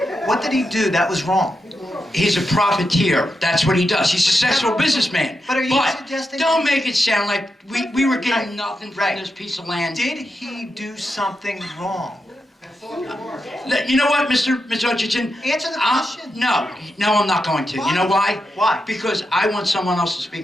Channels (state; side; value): normal; both; correlation 0.87